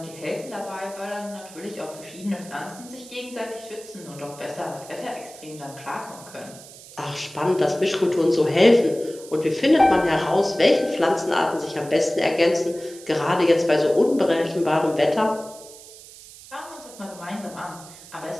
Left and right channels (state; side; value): noise; right; hiss, 18 dB below the sound